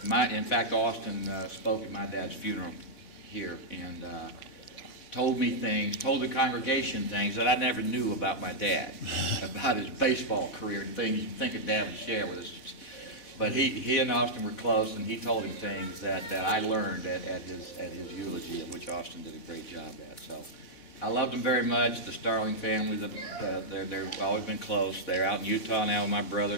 fact, Austin spoke at my dad's funeral here and told the congregation things that I never knew about my dad, about his baseball career and things you'd think a dad would share with us. But he and Austin were close, and he told him things that I learned at his eulogy, of which Austin did a great job at. So I loved them very much. The Starling family, they've always been close. They're out in Utah now with my brother,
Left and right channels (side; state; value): right; late; 4.1 ms